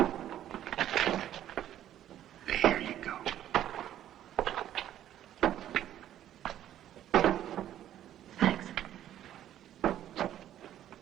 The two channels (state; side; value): quieter; left; 11.7 dB